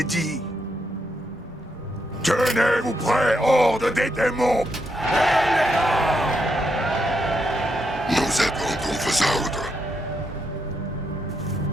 Tenez-vous prêts, horde des démons! Nous attendons vos ordres.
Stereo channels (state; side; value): normal; both; correlation 0.80